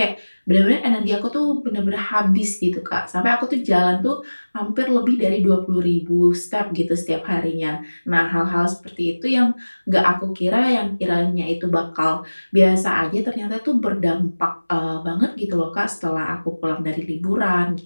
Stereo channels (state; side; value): inverted; both; correlation -1.00